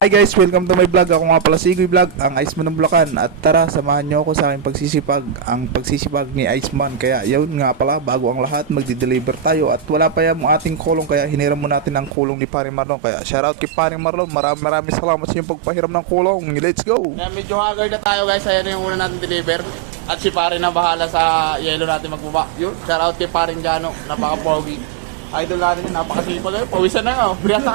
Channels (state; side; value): drops out; left; at 12.1 s